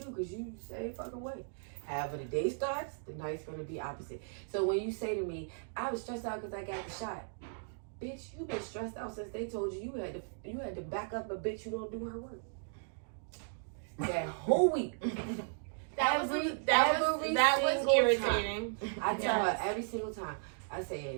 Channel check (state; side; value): silent; left; digital silence